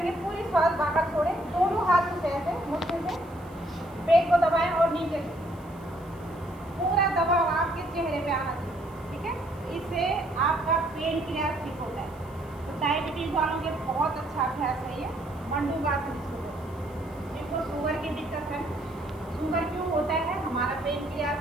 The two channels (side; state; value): left; noise; hiss, 27 dB below the sound